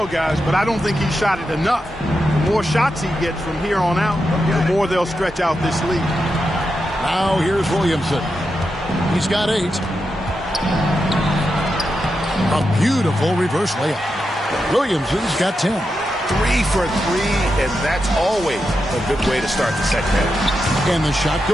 guys, but I don't think he shot it enough. The more shots he gets from here on out, the more they'll stretch out this lead. Now here's Williamson. He's got 8. A beautiful reverse layup. Williamson's got 10. 3 for 3, and that's always a good way to start the second half. And the shot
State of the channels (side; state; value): both; normal; correlation 0.87